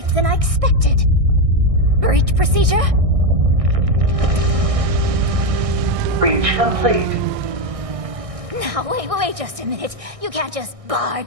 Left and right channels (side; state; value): left; late; 1.6 ms